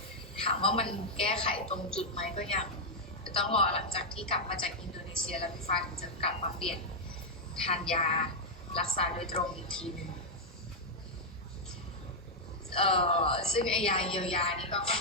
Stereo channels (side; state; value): both; normal; correlation -0.02